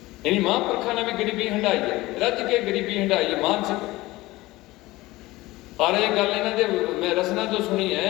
यानी महापुरखा ने भी गरीबी हंडाई है, रज के गरीबी हंडाई है मानसिक। और ये गल इन्हां दे मैं रसना तो सुनी है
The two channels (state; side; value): quieter; right; 19.2 dB